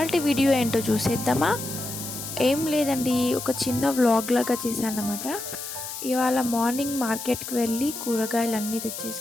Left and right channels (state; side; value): noise; left; hiss, 8 dB below the sound